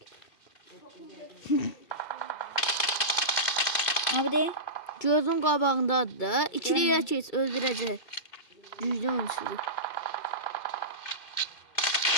Abi de gözün qabağındadır da. İkiliyə keç, öldürəcək. Güclü oyunçudur.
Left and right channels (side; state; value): right; late; 2.5 ms